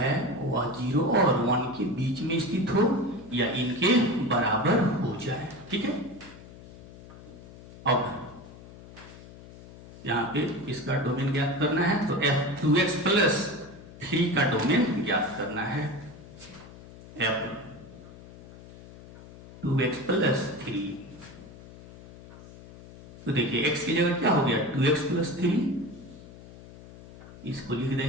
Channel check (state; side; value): noise; left; hum, 18 dB below the sound